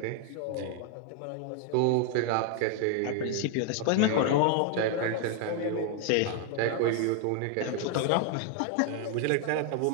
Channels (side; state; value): both; different; correlation 0.00